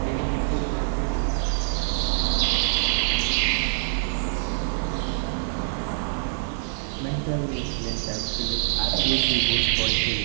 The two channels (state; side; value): silent; left; digital silence